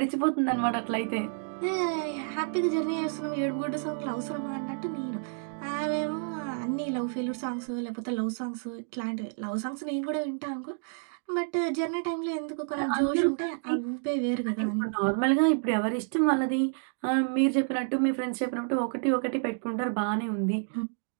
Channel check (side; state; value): left; silent; 58 dB below the other